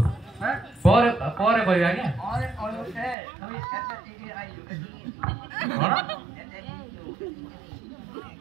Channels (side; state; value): left; drops out; at 3.2 s